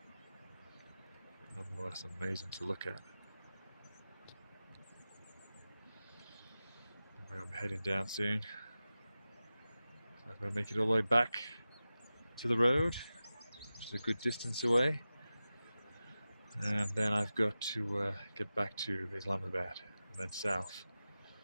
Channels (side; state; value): both; inverted; correlation -0.94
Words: Nonetheless, amazing to look at. I'm heading down soon. So I'm going to make it all the way back to the road, which is a good distance away. And then I've got to get back to Islamabad and then south.